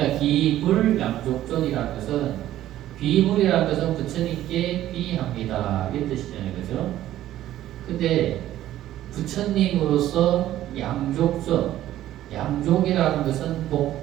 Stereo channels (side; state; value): left; quieter; 13.3 dB